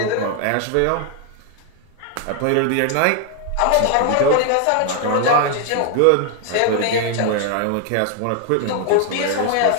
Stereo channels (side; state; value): both; different; correlation 0.00